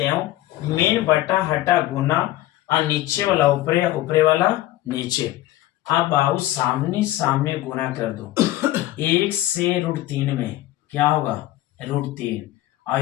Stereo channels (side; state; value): right; quieter; 15.5 dB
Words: मेन बटा हटा गुना और नीचे वाला ऊपरे, ऊपरे वाला नीचे। अब बाबू सामने सामने गुना कर दो 1 से √3 में क्या होगा √3